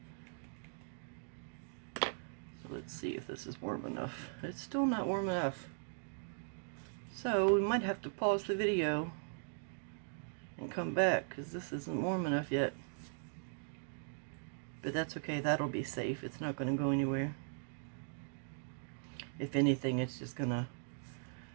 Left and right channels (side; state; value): left; silent; digital silence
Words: So let's see if this is warm enough. It's still not warm enough. So we might have to pause the video and come back because this isn't warm enough yet. But that's okay, that'll be safe. It's not going to go anywhere. If anything, it's just going to